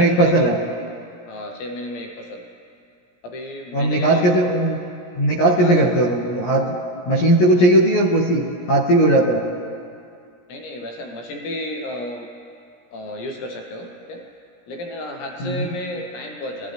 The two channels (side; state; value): right; late; 17 ms